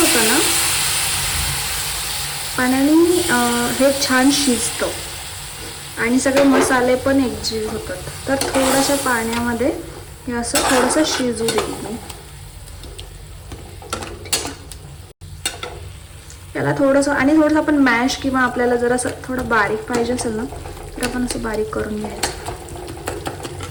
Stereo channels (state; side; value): identical; both; correlation 1.00